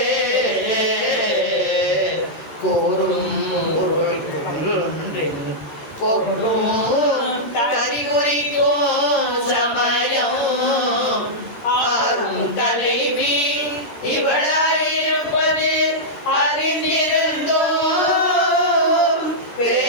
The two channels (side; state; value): right; late; 13 ms